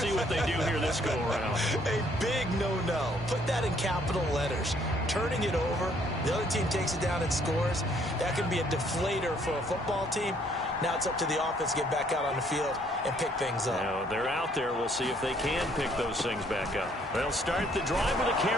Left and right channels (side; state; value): both; normal; correlation 0.65